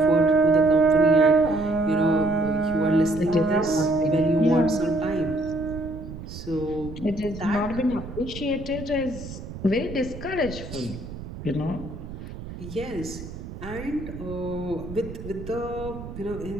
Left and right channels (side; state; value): right; noise; rumble, 11 dB below the sound